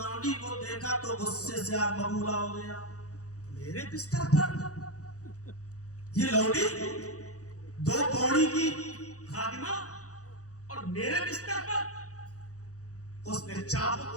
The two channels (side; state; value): right; late; 0.66 ms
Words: کو دیکھا تو غصے سے آگ ببولا ہو گیا. میرے بستر پر یہ لونڈی، 2 کوڑی کی خادمہ، اور میرے بستر پر. اس نے چابک